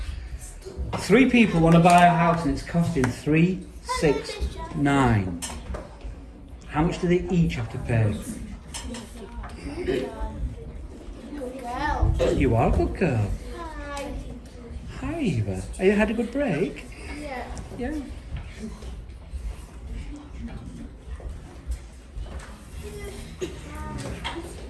3 people want to buy a house and it's costing 369. How much do they each have to pay? You are a good girl. Hi, Eva. Have you had a good break? Yeah.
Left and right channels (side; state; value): both; identical; correlation 1.00